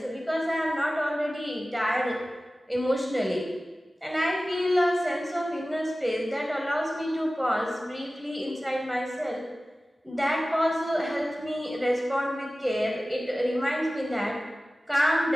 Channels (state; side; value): normal; both; correlation 0.96